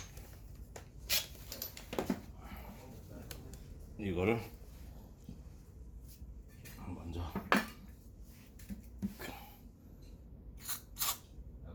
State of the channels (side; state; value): both; identical; correlation 1.00